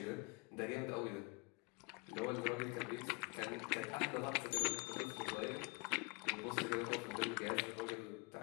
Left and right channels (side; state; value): right; quieter; 29.1 dB